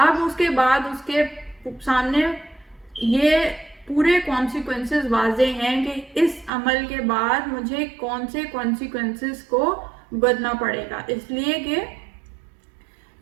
اب اس کے بعد اس کے سامنے یہ پورے کانسیکوینسز واضح ہیں کہ اس عمل کے بعد مجھے کون سے کانسیکوینسز کو بھگتنا پڑے گا، اس لیے کہ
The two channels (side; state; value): left; drops out; at 6.5 s